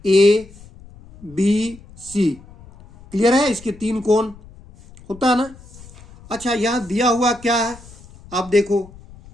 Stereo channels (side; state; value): left; noise; rumble, 21 dB below the sound